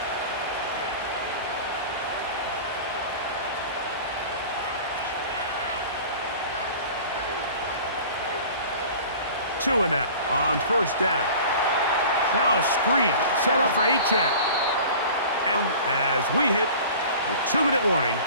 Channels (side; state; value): both; inverted; correlation -0.41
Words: Tua now on 1st down. Now a screen set up for Achane. And as we hit the 2-minute warning